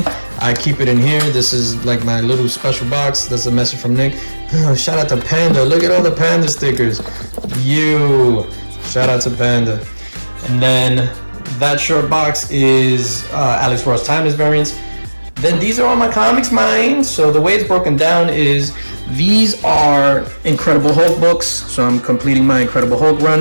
I keep it in here. This is like my little special box. That's a message from Nick. Shout out to Panda. Look at all the Panda stickers. Shout out to Panda. And then that short box is Alex Ross Timeless variants. Then these are all my comics, mine. So the way it's broken down is these are Incredible Hulk books. So I'm completing my Incredible Hulk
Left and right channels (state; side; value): inverted; both; correlation -1.00